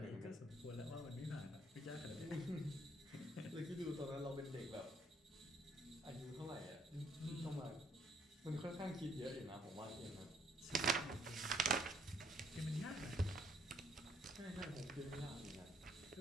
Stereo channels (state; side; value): normal; both; correlation 0.66